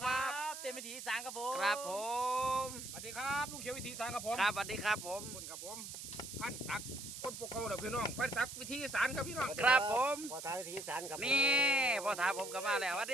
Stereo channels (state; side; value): noise; right; hiss, 9 dB below the sound